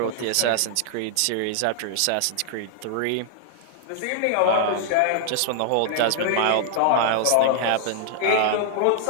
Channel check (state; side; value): different; both; correlation 0.00